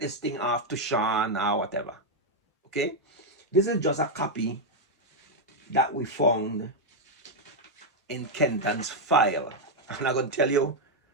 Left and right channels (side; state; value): both; normal; correlation 0.00